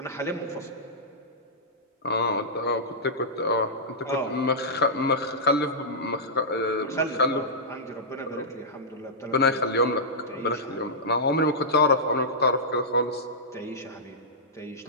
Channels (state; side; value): normal; both; correlation -0.13